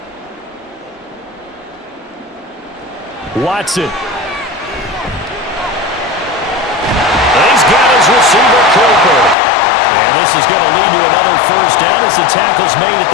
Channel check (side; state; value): right; drops out; at 9.3 s